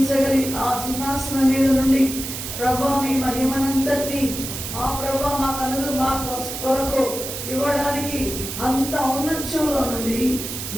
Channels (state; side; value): noise; right; hiss, 7 dB below the sound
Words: ఆ సింహాసనం మీద నుండి ప్రభా మీ మహిమనంతటిని మా ప్రభా మా కొరకు ఇవ్వడానికి అంత ఔన్నత్యంలో నుండి